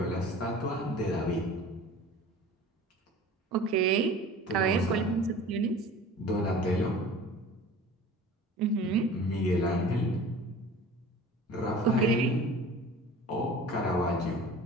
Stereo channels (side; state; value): both; normal; correlation 0.41